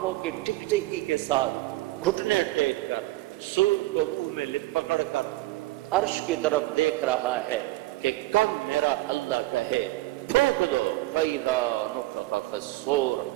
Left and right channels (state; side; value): quieter; left; 18.7 dB